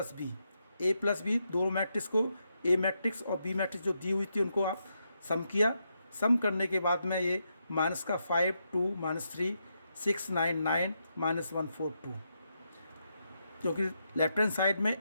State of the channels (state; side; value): inverted; both; correlation -0.82